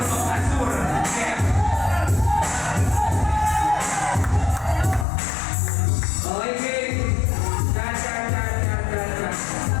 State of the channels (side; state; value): right; drops out; at 5.1 s